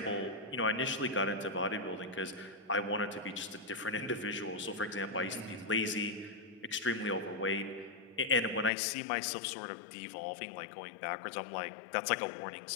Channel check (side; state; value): right; drops out; at 8.7 s